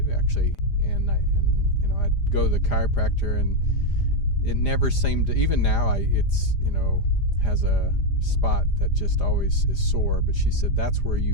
actually. And I'd go to the chiropractor, and it never seemed to, even now it's has a spot that just always is sore. But she said that's where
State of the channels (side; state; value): right; late; 5.0 ms